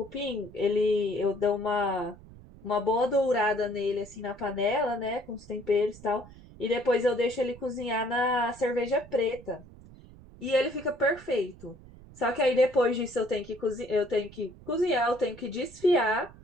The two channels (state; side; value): noise; right; rumble, 20 dB below the sound